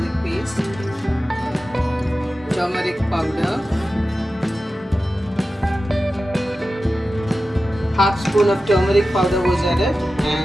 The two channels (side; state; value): both; normal; correlation 0.94